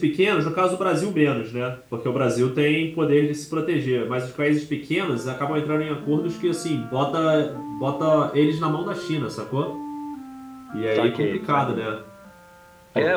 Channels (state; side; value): identical; both; correlation 1.00